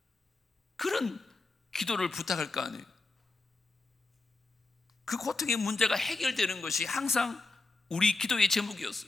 그런 기도를 부탁할 거 아니에요. 그 고통의 문제가 해결되는 것이 항상 우리 기도의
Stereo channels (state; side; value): quieter; right; 3.5 dB